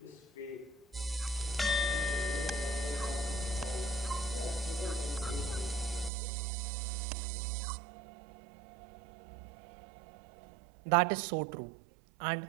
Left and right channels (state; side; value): drops out; left; at 6.1 s